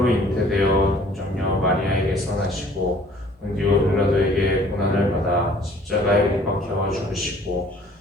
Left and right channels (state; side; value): normal; both; correlation 0.55